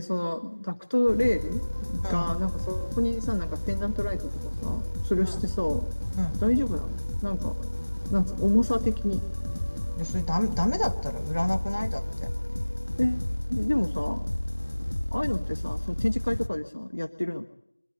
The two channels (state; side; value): inverted; both; correlation -1.00